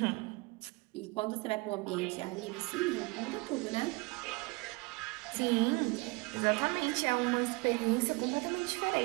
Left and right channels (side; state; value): left; quieter; 26.1 dB